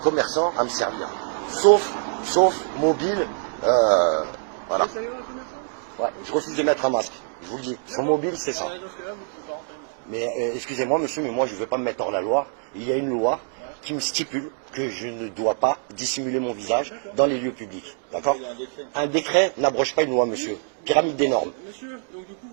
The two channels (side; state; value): left; silent; digital silence